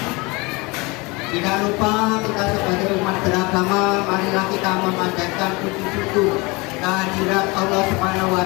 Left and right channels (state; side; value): quieter; right; 25.5 dB